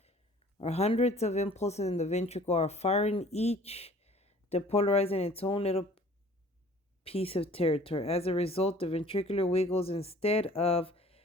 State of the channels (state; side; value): normal; both; correlation 0.51